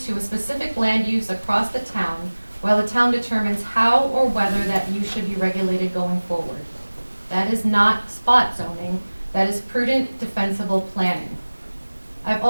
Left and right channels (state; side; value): inverted; both; correlation -1.00